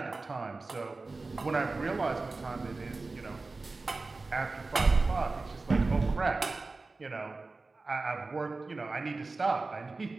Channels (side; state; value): left; quieter; 3.6 dB